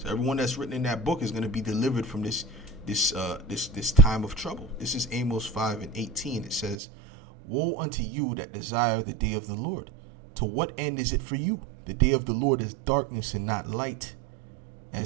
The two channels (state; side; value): drops out; left; at 6.8 s